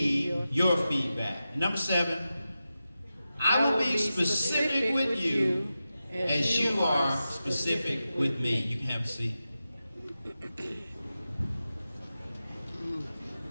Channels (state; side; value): inverted; both; correlation -0.92